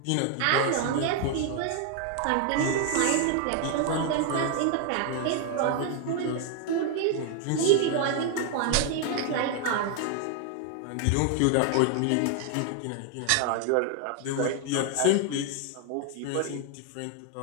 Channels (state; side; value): different; both; correlation 0.00